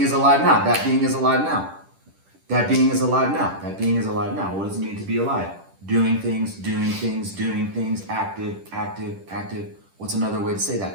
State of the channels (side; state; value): left; late; 10 ms